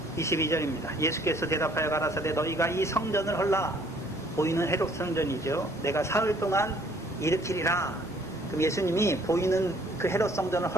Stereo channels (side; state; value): both; normal; correlation 0.60